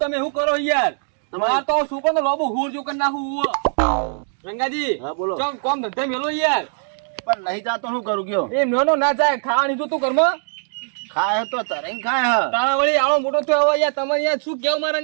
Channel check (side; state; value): left; silent; digital silence